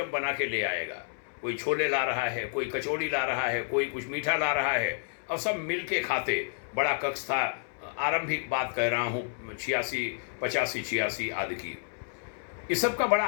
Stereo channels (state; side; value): silent; right; 58 dB below the other